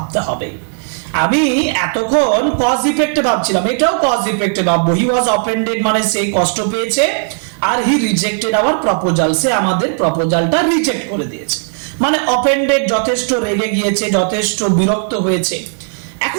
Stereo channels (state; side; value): silent; left; digital silence